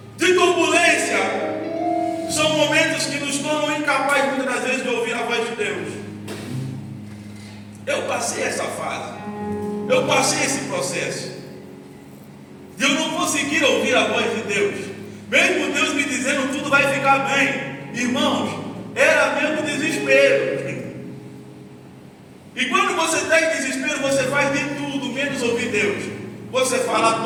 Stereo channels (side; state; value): both; identical; correlation 1.00